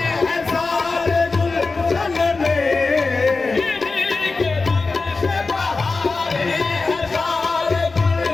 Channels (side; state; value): right; quieter; 3.9 dB